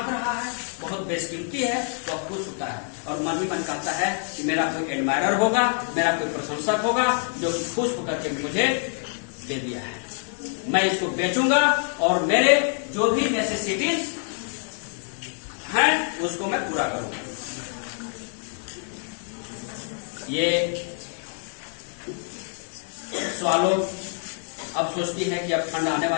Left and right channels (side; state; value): right; silent; 55 dB below the other